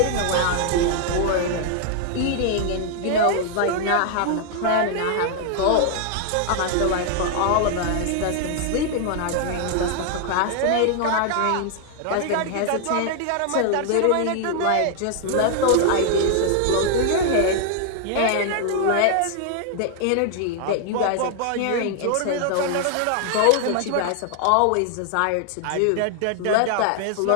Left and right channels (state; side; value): different; both; correlation 0.00